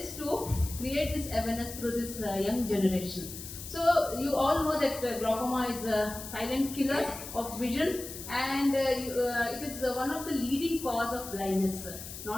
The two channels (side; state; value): left; noise; hiss, 11 dB below the sound